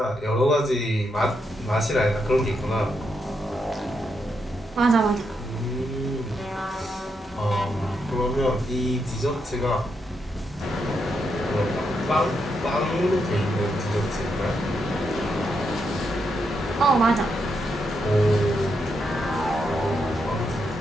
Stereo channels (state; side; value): normal; both; correlation 0.81